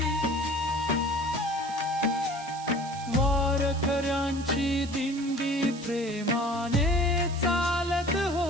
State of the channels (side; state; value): right; noise; hiss, 16 dB below the sound